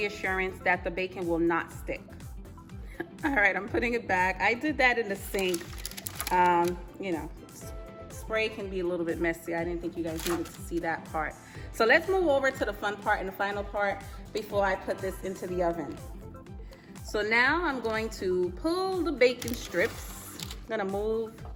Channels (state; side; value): identical; both; correlation 1.00